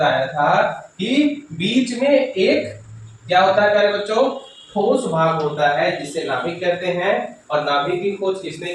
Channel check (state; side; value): identical; both; correlation 1.00